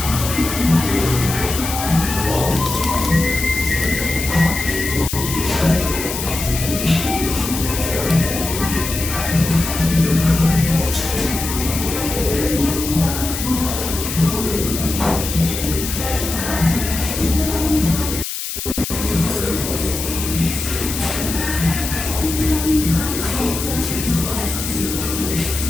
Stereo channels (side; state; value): left; noise; hiss, 5 dB below the sound